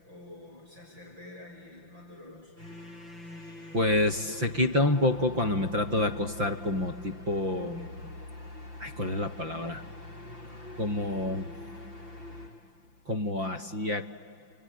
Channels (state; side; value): late; left; 5.8 ms